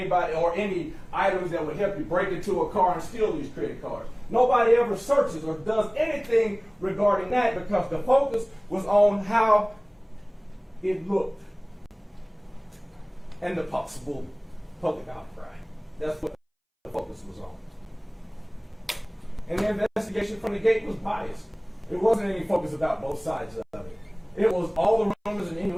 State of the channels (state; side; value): identical; both; correlation 1.00